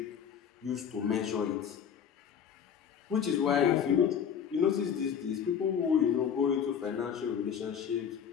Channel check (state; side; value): quieter; right; 7.9 dB